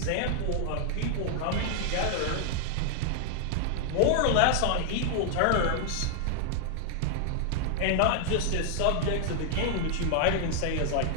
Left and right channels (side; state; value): both; different; correlation 0.00